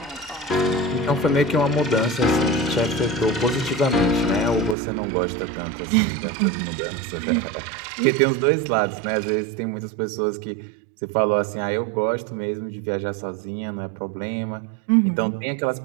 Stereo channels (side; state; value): left; drops out; at 4.8 s